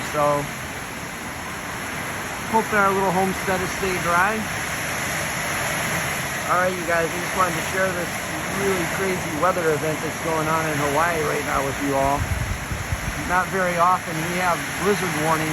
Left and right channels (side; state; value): both; identical; correlation 1.00